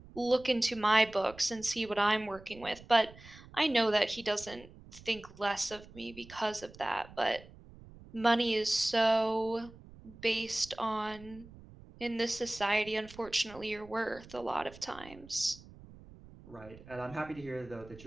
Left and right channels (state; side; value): noise; right; rumble, 20 dB below the sound